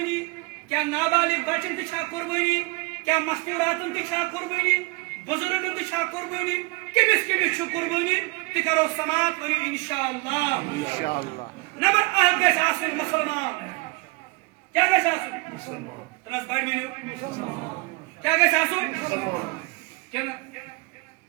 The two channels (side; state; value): left; quieter; 27.0 dB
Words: کیاہ نابالغ بچن تہِ چھا قربٲنی کیاہ مستوٗراتن تہِ چھا قربٲنی بُزرگن تہِ چھا قربٲنی کٔمِس چھُ قربٲنی تہِ کرو سماعت ؤنِو انشاءاللہ نمبر اکھ گژھِ آسُن مُسلمان کیاہ گژھِ آسُن تنس بڑِ ؤنِو کیاہ گژھِ آسُن کِنہٕ